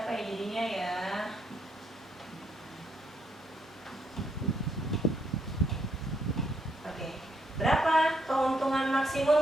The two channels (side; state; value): both; normal; correlation 0.75